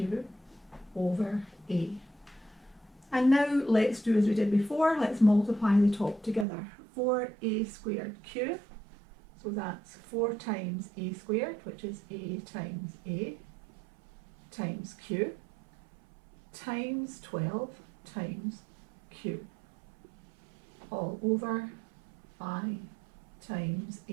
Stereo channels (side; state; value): left; drops out; at 6.5 s